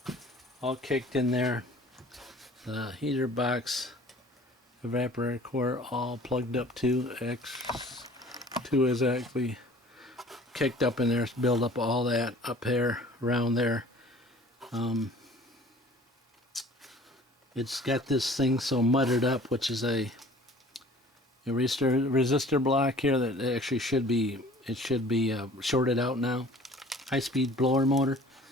all kicked in there. The heater box, evaporator core, all plugged up to X2 is actually kicked up in there. It's build up all that up there, around there. It's got this thing so muddied up, which is a resistor block here that actually should be shorted out now. High-speed blower motor,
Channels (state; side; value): normal; both; correlation 0.49